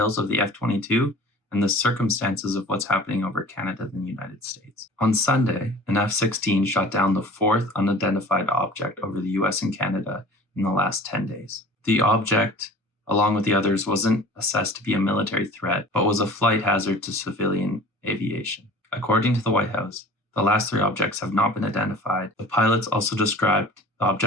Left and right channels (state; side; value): normal; both; correlation 0.43